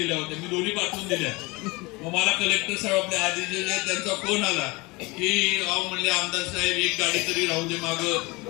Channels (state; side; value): quieter; right; 24.4 dB